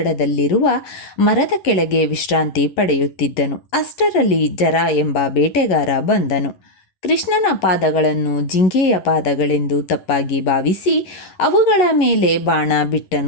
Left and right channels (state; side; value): late; right; 11 ms